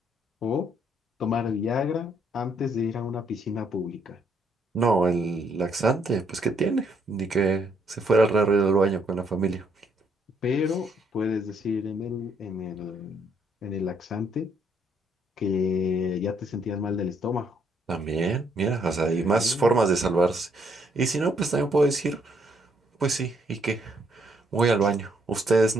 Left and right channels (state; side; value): normal; both; correlation 0.71